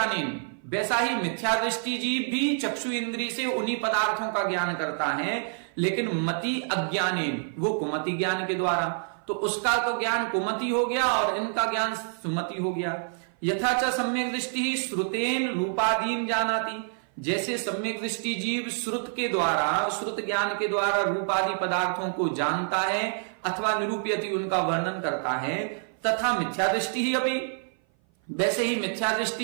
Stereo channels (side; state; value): left; silent; 56 dB below the other